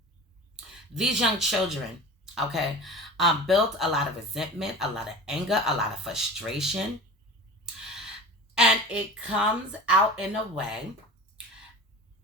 These young children, okay, built a lot of resentment, a lot of anger, a lot of frustration, and it comes out in a way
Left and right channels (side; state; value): both; normal; correlation 0.36